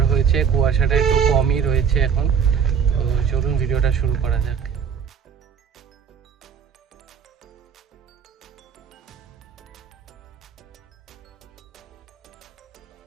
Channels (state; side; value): quieter; left; 7.0 dB